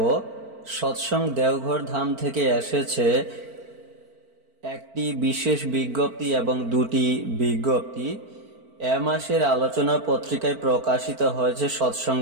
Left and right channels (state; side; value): late; left; 4.5 ms